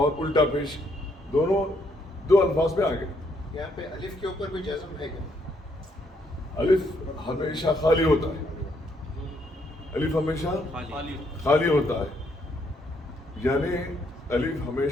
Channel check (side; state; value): both; normal; correlation 0.72